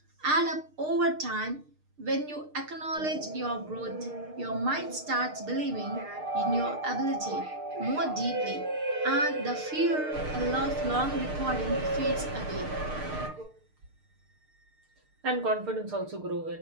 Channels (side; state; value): left; late; 6.6 ms